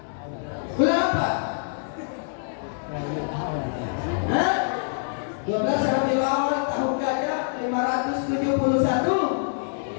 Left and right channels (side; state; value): right; silent; digital silence